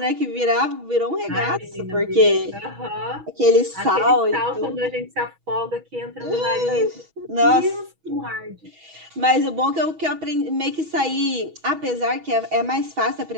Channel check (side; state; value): left; late; 6.2 ms